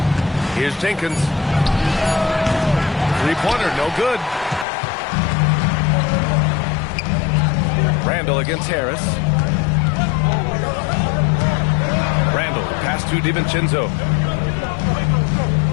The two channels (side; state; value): right; drops out; at 4.7 s